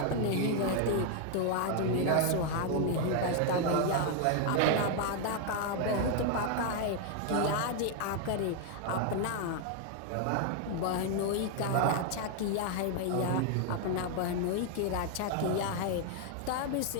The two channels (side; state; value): both; different; correlation 0.00